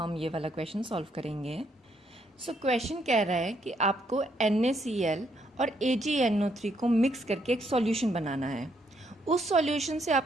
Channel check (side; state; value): both; normal; correlation 0.73